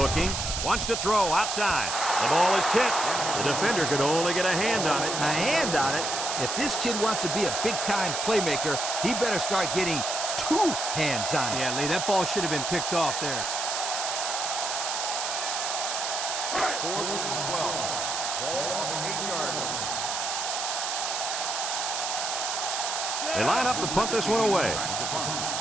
Wants to throw outside. The ball is tipped. The defender could only get a hand on it. A hand on it? If this kid wants to be a big-time playmaker, he better start getting 2 hands on it. Yeah, Lee, that ball should have been picked off there. 4th and 12. Ball on the 8-yard line. They line up to punt this one away. Back to punt.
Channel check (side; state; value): right; noise; hiss, 2 dB below the sound